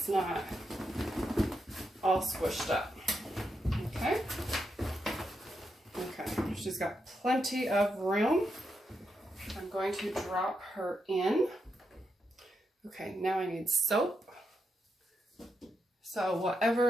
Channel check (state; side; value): normal; both; correlation 0.83